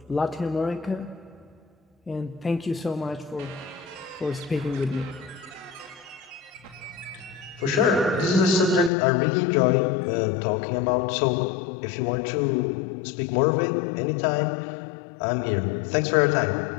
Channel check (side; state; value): right; drops out; at 8.9 s